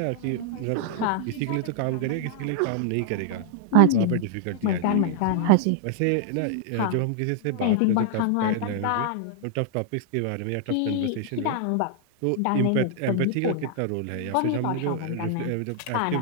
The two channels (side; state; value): both; different; correlation 0.00